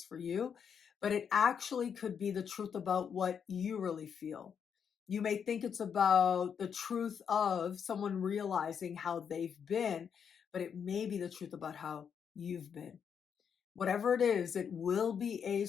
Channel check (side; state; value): right; quieter; 7.3 dB